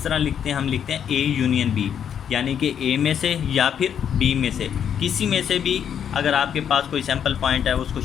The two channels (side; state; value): right; quieter; 8.5 dB